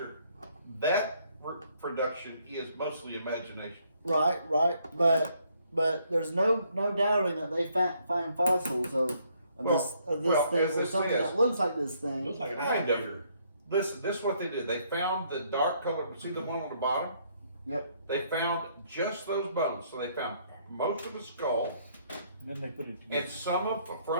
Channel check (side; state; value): both; inverted; correlation -0.68